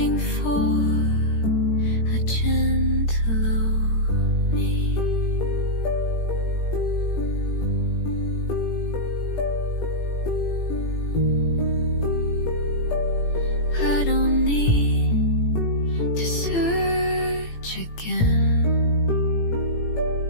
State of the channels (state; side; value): late; right; 18 ms